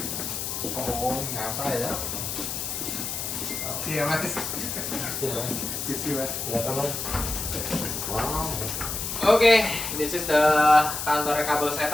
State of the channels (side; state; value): left; noise; hiss, 4 dB below the sound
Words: Oh, nyata ya. Iya, Mas. Wow. Oke, this is the kantornya Kabel